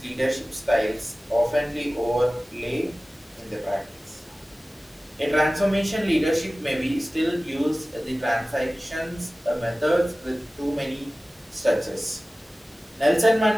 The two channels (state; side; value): normal; both; correlation 0.97